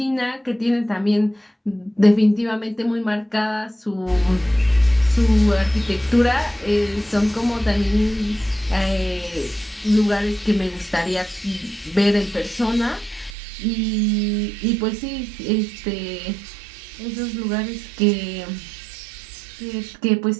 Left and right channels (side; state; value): left; drops out; at 13.3 s